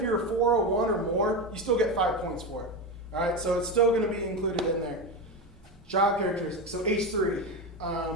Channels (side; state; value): both; normal; correlation 0.17